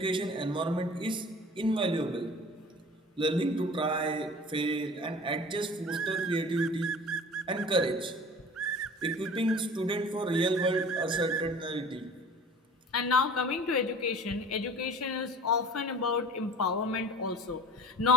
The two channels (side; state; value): both; normal; correlation 0.43